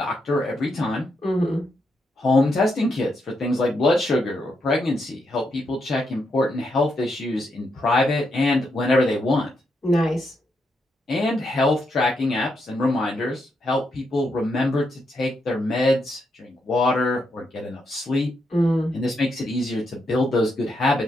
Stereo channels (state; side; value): normal; both; correlation 0.81